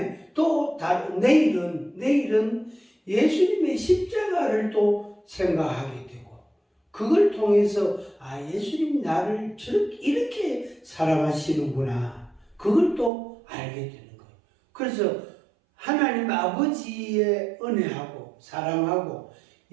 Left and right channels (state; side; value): drops out; left; at 13.1 s